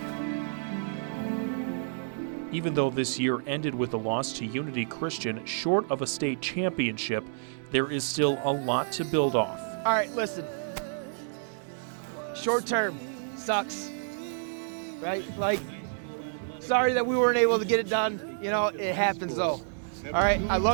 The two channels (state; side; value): silent; left; digital silence